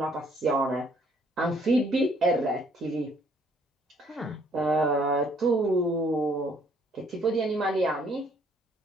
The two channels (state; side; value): normal; both; correlation 0.64